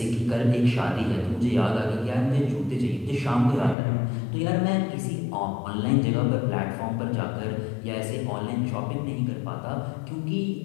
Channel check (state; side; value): drops out; right; at 3.8 s